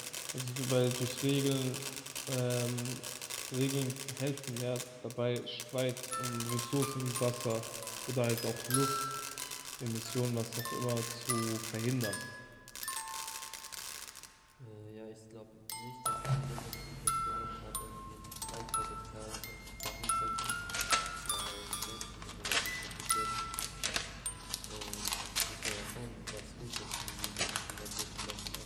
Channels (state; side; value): identical; both; correlation 1.00